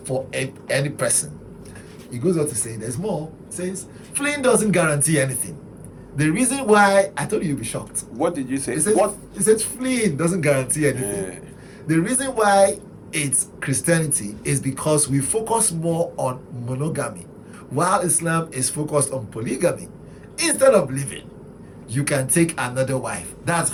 for any person. He goes on to say, there's more. He says, fleeing doesn't guarantee anything. The reason why, I told you you'll be shocked. What did you say? He says fleeing doesn't guarantee anything. The reason why it's Christianity is because we focus more on monogamy, while Islam is focused on polygamy. Instead of living, you can take another wife. That's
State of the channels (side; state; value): both; identical; correlation 1.00